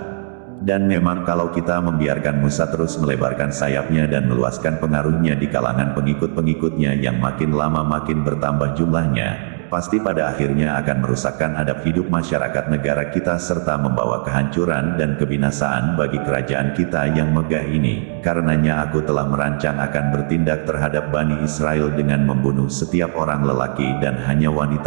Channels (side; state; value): left; silent; 67 dB below the other